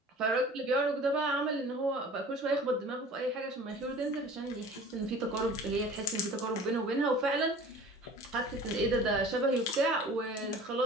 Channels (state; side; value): normal; both; correlation 0.44